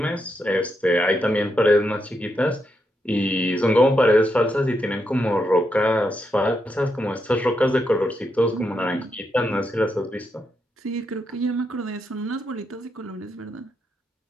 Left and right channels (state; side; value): normal; both; correlation 0.82